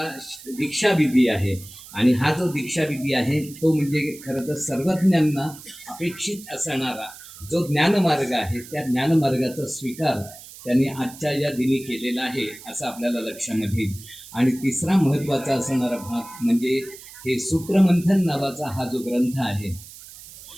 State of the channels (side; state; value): right; noise; hiss, 17 dB below the sound